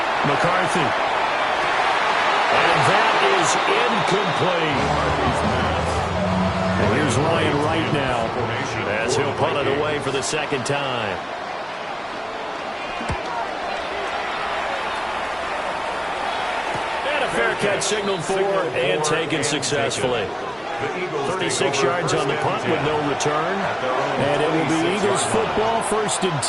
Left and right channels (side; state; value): both; identical; correlation 1.00